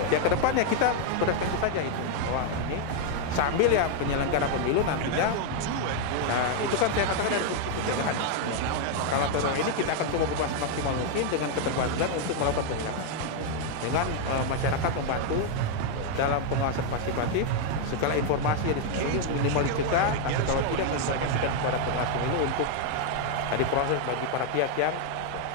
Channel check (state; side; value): different; both; correlation 0.00